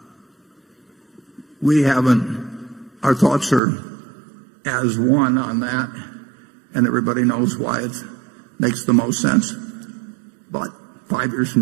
we haven't, our thoughts are as one on that, and everybody knows why it makes the most sense. But 5 years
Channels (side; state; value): left; drops out; at 3.6 s